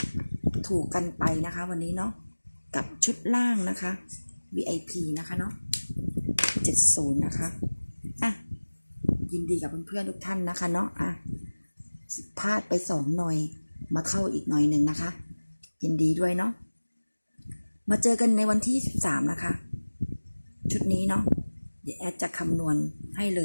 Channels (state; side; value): inverted; both; correlation -1.00